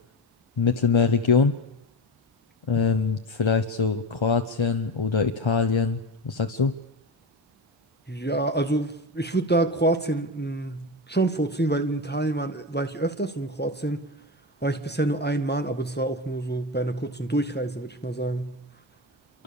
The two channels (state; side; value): normal; both; correlation 0.21